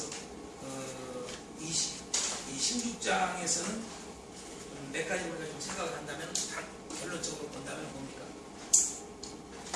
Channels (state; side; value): identical; both; correlation 1.00